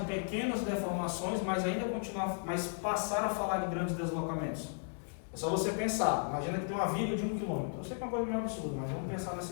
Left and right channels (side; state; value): right; silent; digital silence